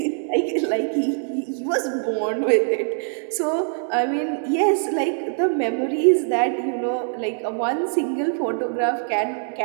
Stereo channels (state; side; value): silent; left; digital silence